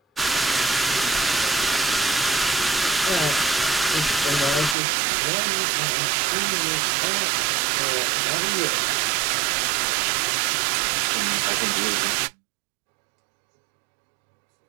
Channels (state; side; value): drops out; left; at 4.8 s